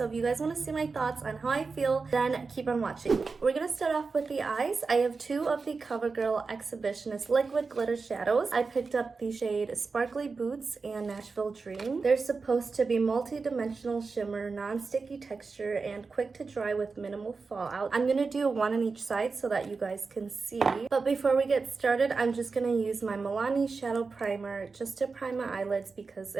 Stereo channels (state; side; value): quieter; left; 4.5 dB